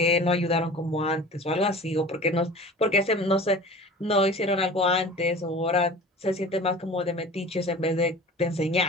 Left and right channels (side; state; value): both; normal; correlation 0.40